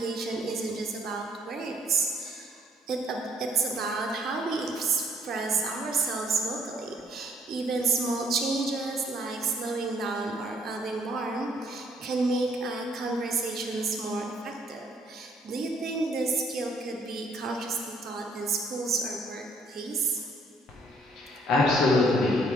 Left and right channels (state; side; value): normal; both; correlation 0.65